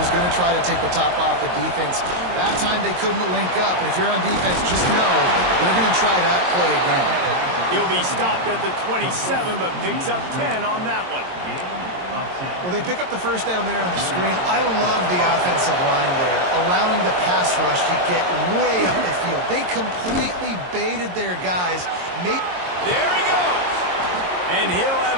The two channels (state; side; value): late; left; 22 ms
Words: going to try to take the top off the defense. That time they couldn't link up, but if you're on defense, just know they're going to try that play again. He'll be stopped at the 27, but picks up 10 on that one. Well, they pick up the first down there on the screen. I love the offensive line there, allowing the pass rush to get way up the field. They completely baited their guys. There he goes. And he'll